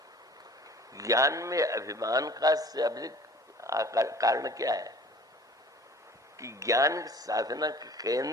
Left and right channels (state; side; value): normal; both; correlation 0.48